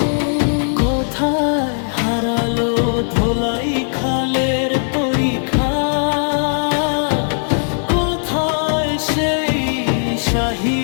কোথায় হারালো ধোলাই খালের পরীক্ষা, কোথায় সেই শাহী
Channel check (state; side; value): silent; right; digital silence